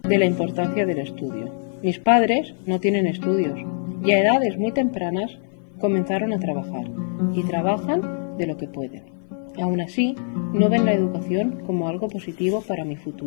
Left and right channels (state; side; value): silent; right; 55 dB below the other